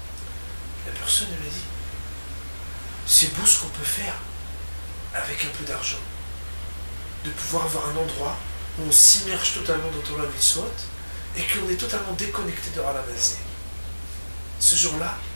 La personne, elle m'a dit, c'est beau ce qu'on peut faire avec un peu d'argent. De pouvoir avoir un endroit où on s'immerge totalement dans Torah Mitzvot et qu'on est totalement déconnecté de Ralamazé. Ce jour-là,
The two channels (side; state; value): both; inverted; correlation -1.00